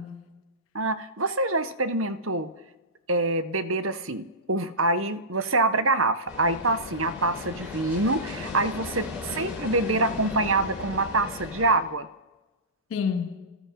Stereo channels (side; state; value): both; normal; correlation -0.20